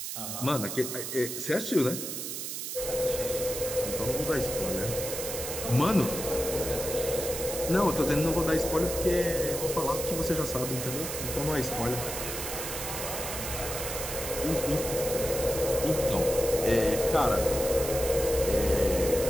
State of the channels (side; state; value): right; noise; hiss, 5 dB below the sound